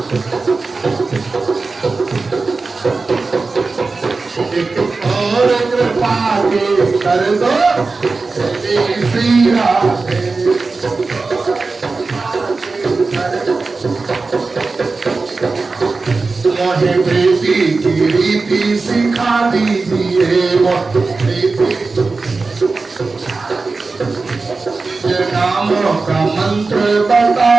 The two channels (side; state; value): left; quieter; 3.9 dB